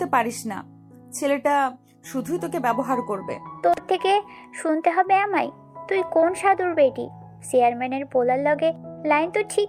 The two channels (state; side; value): identical; both; correlation 1.00